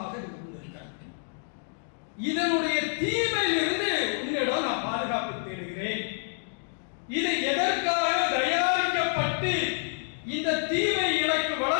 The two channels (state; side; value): silent; right; digital silence